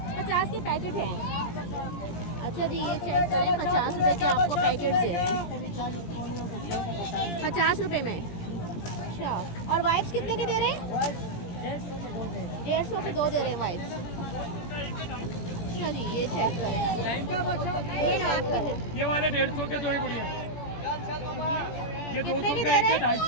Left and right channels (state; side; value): late; right; 17 ms